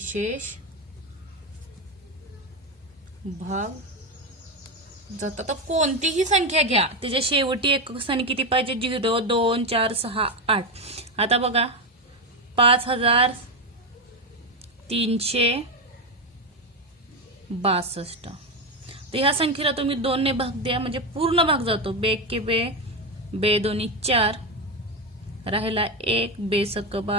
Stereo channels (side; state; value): both; normal; correlation 0.11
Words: भाग जातात. तर कोणतीही संख्या घ्या, त्याच्या शेवटी एकक स्थानी किती पाहिजे, 0 2 4 6 8. आता बघा 5362. तर ह्या संख्येला तुम्ही 2 ने भाग द्या, म्हणजे पूर्ण भाग जातो. बे के बे, बे दोन्ही 4 राहिला 1, बे सक